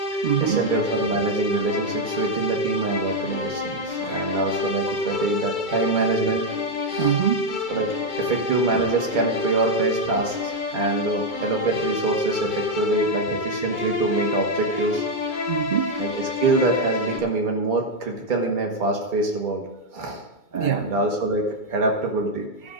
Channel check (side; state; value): right; late; 2.3 ms